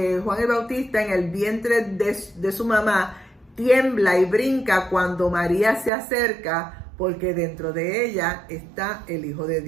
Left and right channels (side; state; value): left; drops out; at 5.9 s